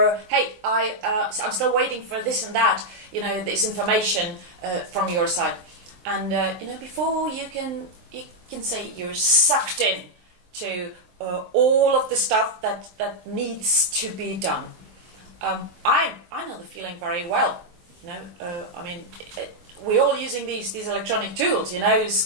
hey, I'm still waiting for this and that. This information from your side. And before you can say you're sucked in to all of the stuff that needs to be done. I know the feeling very well. We're all using these electronic tools,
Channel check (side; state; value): left; late; 23 ms